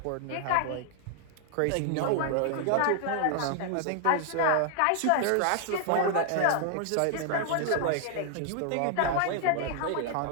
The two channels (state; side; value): different; both; correlation 0.00